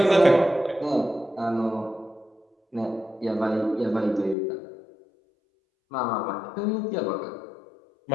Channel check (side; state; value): right; drops out; at 4.4 s